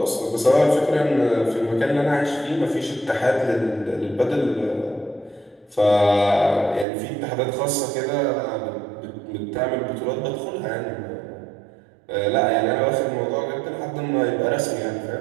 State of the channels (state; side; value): drops out; left; at 6.9 s